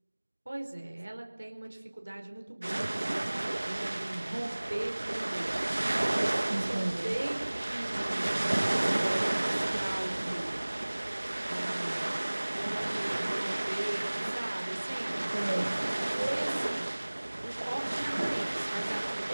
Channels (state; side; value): inverted; both; correlation -1.00